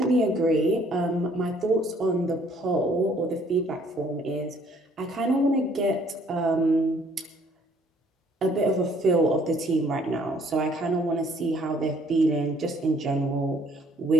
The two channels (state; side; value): normal; both; correlation 0.61